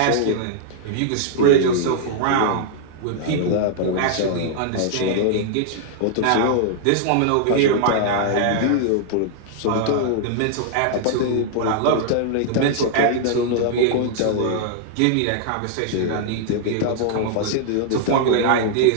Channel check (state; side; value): different; both; correlation -0.01